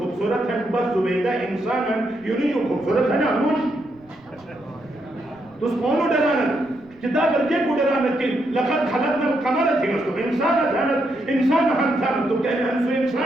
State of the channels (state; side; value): noise; right; rumble, 28 dB below the sound